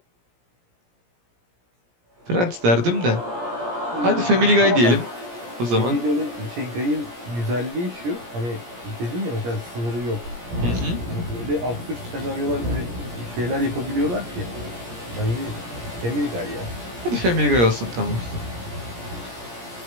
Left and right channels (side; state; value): left; late; 17 ms